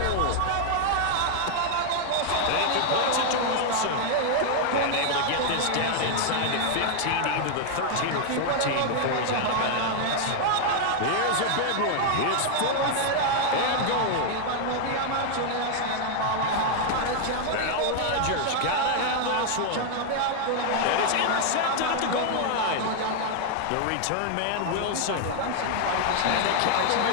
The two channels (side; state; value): both; different; correlation 0.00